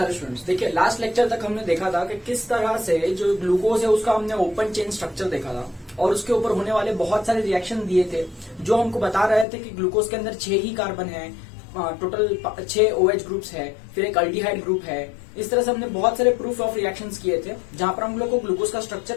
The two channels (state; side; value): drops out; right; at 9.5 s